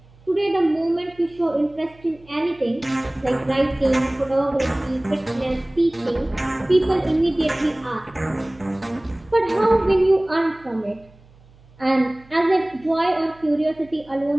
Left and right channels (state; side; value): noise; right; hum, 27 dB below the sound